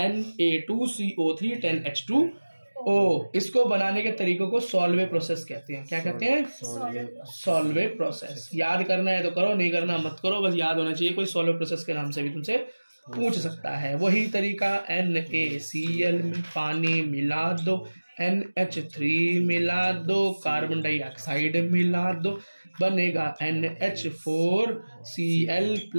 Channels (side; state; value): both; inverted; correlation -1.00